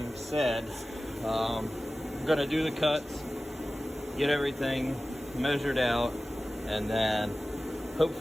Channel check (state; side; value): normal; both; correlation 0.96